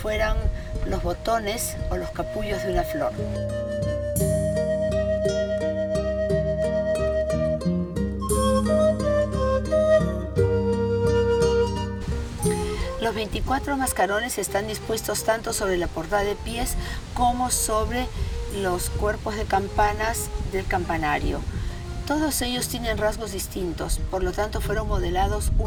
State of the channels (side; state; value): both; identical; correlation 1.00